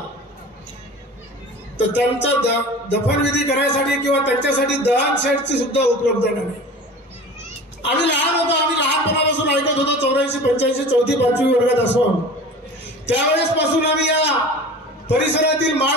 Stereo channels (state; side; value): normal; both; correlation 0.38